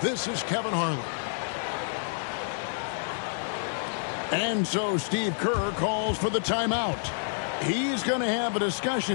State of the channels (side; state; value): right; silent; 58 dB below the other